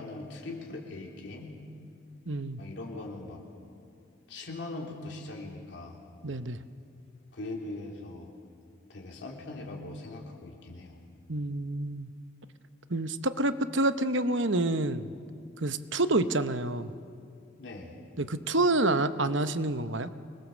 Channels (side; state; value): both; normal; correlation 0.18